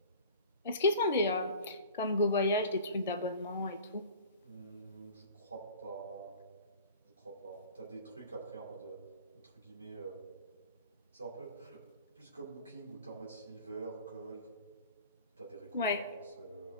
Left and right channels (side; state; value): both; inverted; correlation -0.42